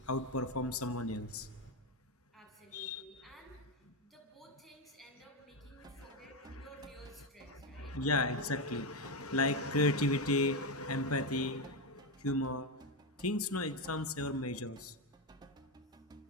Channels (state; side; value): normal; both; correlation 0.10